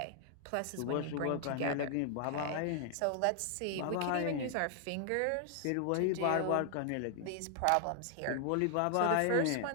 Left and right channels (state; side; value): different; both; correlation 0.00